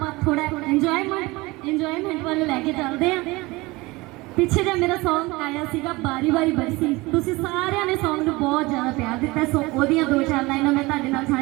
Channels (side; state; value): left; quieter; 22.5 dB